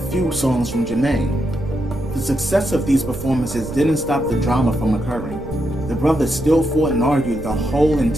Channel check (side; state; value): right; noise; rumble, 12 dB below the sound